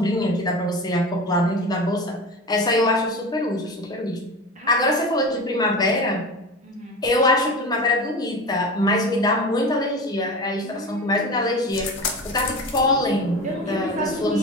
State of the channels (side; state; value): both; normal; correlation 0.30